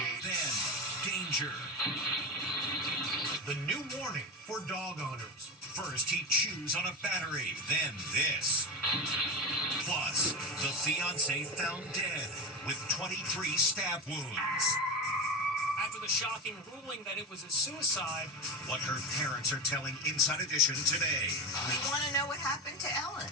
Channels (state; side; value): normal; both; correlation 0.20